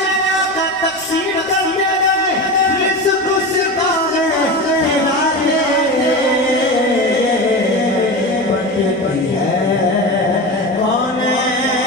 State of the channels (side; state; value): right; noise; rumble, 27 dB below the sound